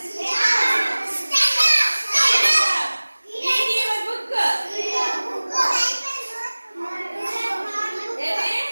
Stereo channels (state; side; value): inverted; both; correlation -1.00